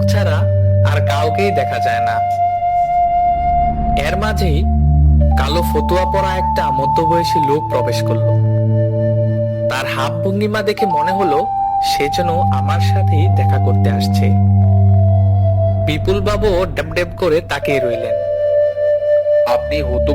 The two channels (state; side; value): identical; both; correlation 1.00